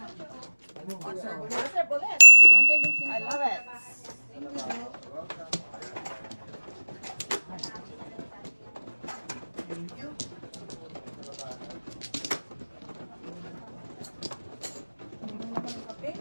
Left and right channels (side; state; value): both; inverted; correlation -1.00